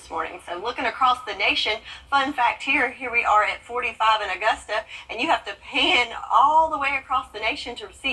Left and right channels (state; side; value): identical; both; correlation 1.00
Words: morning. So looking across the nation, fun fact here we are at 45 in Augusta, and you have to pan all the way across the nation to